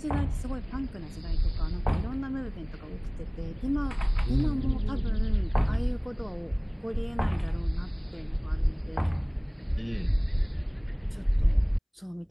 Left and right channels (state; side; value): identical; both; correlation 1.00